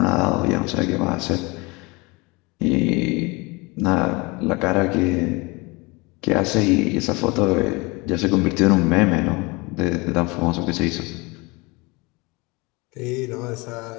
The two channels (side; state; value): right; quieter; 25.8 dB